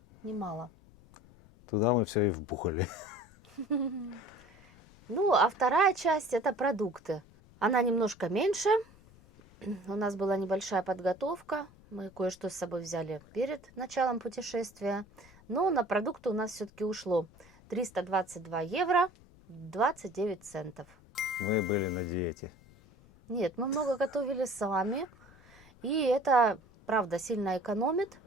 немало. Туда мы все и вбухали. Ну, а вторая часть – это продукты. Она немножко меньше, у нас была небольшая подготовка, мы кое-что с собой взяли перед началом путешествия, но на продукты у нас все-таки ушло 322 евро 29 центов. Мы были на диете. Нет, мы много готовили сами, и это, правда, сильно экономит.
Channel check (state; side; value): noise; left; rumble, 25 dB below the sound